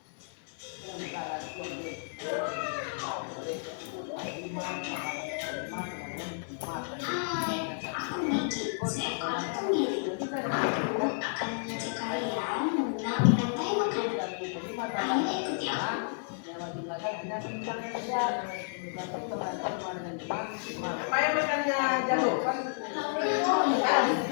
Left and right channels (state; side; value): silent; right; digital silence